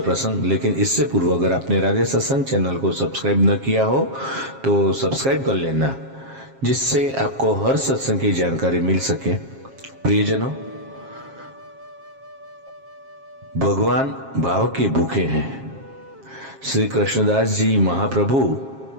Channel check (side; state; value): left; late; 7.4 ms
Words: प्रसंग। लेकिन इससे पूर्व अगर आपने राधे सत्संग चैनल को सब्सक्राइब न किया हो तो सब्सक्राइब कर लेना, जिससे आपको हर सत्संग की जानकारी मिल सके। प्रियजनों, भगवान भाव के भूखे हैं। श्री कृष्णदास जी महाप्रभु